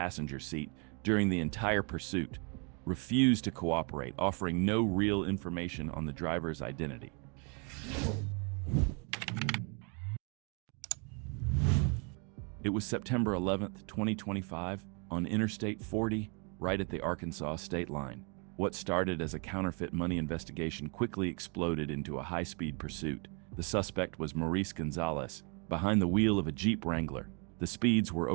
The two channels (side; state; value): left; quieter; 35.8 dB